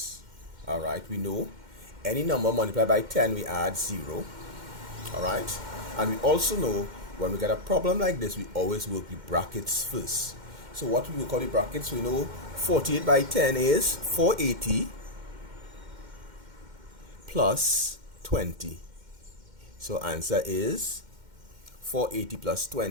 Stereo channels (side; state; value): left; late; 2.1 ms